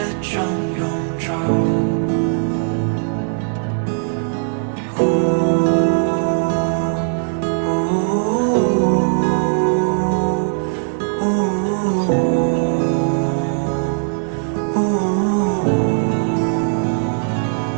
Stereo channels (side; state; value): left; silent; 66 dB below the other